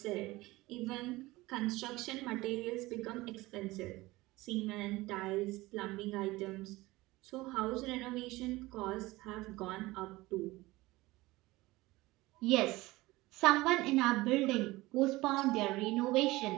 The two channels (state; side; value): quieter; left; 19.9 dB